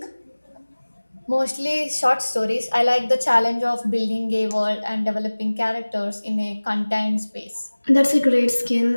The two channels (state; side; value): inverted; both; correlation -1.00